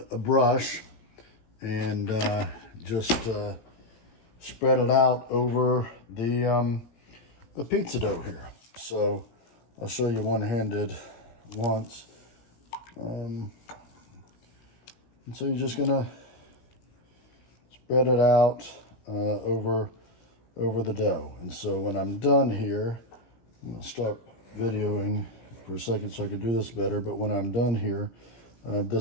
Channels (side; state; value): right; late; 17 ms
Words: brush and just spread it out over the pizza dough here. So I'll show you one-handed once. And so you're just gonna spread it out over the dough. And so when I'm done here, I'm gonna stop videoing for a second so I can do this better. But when I'm done here,